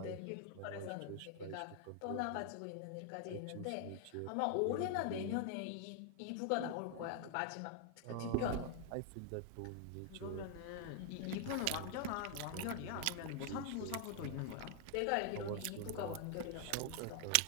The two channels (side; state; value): both; different; correlation 0.00